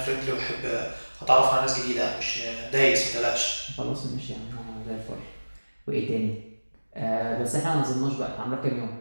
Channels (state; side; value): inverted; both; correlation -1.00